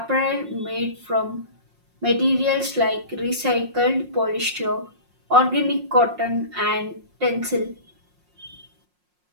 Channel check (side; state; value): left; late; 5.6 ms